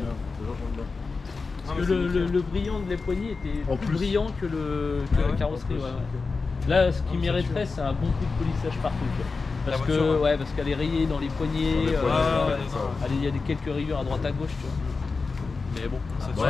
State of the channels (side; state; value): right; quieter; 4.3 dB